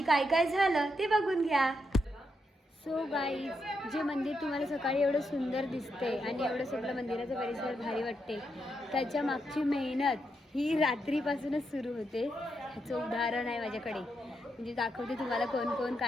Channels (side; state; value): both; normal; correlation 0.82